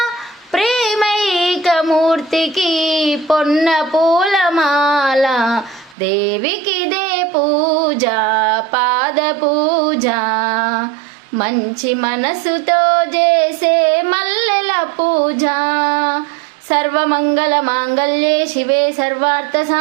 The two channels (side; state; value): left; drops out; at 6.0 s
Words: ప్రేమైకమూర్తికి పొన్న పూలమాల. దేవికిదే పూజ పాద పూజ, మంచి మనసుతో చేసే మల్లెల పూజ. సర్వమంగళ మాంగళ్యే శివే సర్వార్థ